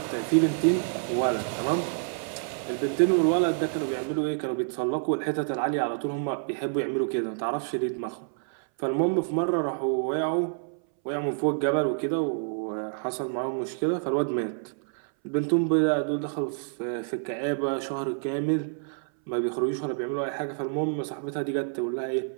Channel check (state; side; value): silent; left; 60 dB below the other